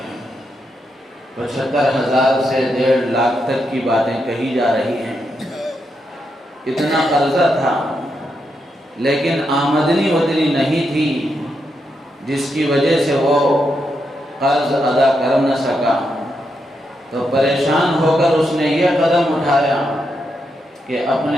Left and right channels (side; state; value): both; normal; correlation 0.83